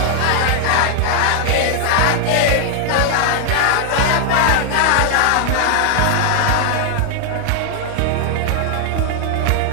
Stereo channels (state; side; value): different; both; correlation 0.00